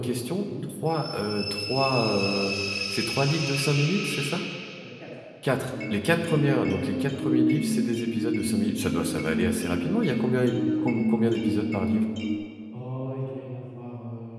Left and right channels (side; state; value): both; identical; correlation 1.00